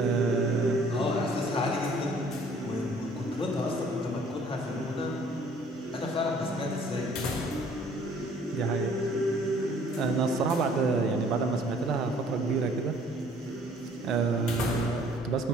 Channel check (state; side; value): normal; both; correlation 0.57